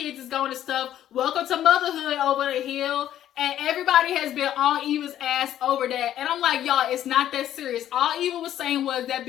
is going and stuff. Welcome to motherhood over the hill. And everybody has been on Eva's ass over that. And I'm like, y'all, it's not that serious. All Eva was saying was that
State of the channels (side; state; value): right; quieter; 11.6 dB